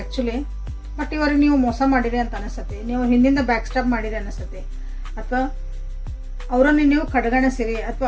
ಬಟ್ ಇವ್ರಿಗೆ ನೀವು ಮೋಸ ಮಾಡಿರಿ ಅಂತ ಅನಿಸುತ್ತೆ, ನೀವು ಹಿಂದಿಂದ ಬ್ಯಾಕ್ ಸ್ಟಾಪ್ ಮಾಡಿರಿ ಅನಿಸುತ್ತೆ, ಅಥವಾ ಅವರನ್ನು ನೀವು ಕಡೆಗಣಿಸಿರಿ, ಅಥವಾ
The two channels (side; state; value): both; identical; correlation 1.00